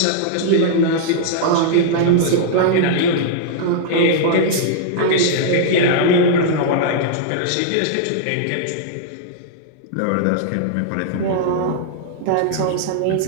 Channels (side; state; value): both; different; correlation -0.01